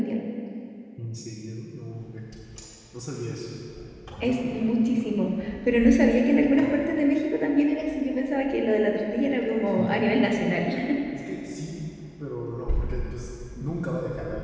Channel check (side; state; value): both; identical; correlation 1.00